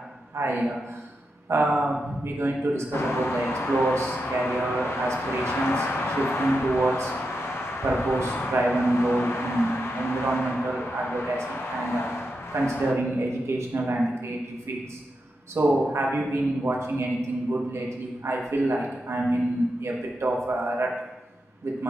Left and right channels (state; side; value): normal; both; correlation 0.86